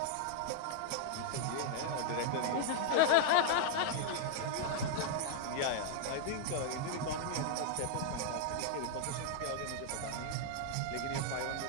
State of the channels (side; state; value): both; different; correlation -0.01